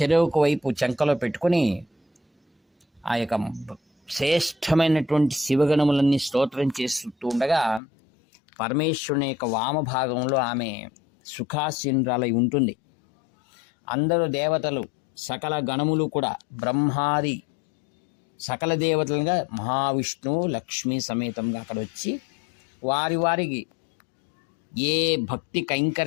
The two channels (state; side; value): drops out; right; at 7.8 s